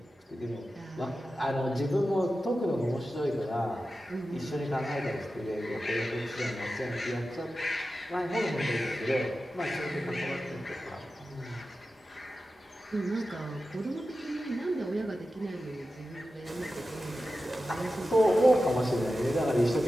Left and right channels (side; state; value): both; normal; correlation 0.93